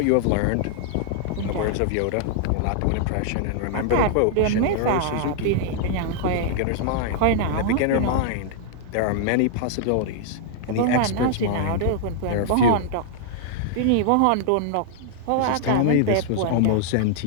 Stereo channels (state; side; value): different; both; correlation -0.01